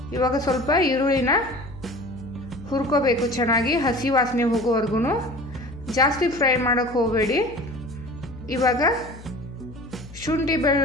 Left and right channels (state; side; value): noise; left; hum, 17 dB below the sound